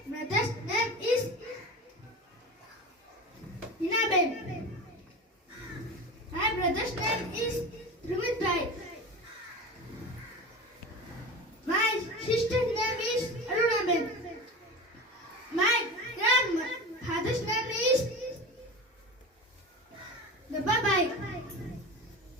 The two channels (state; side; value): normal; both; correlation 0.30